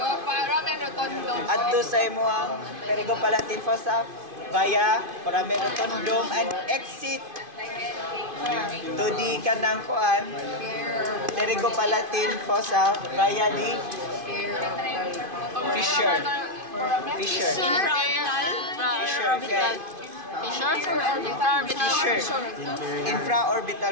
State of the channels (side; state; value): left; late; 2.5 ms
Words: adto sa imong pterygopalatine fossa via foramen rotundum and exit to the kanang kuan pterygopalatine fossa via the fissure. Infraorbital. Fissure.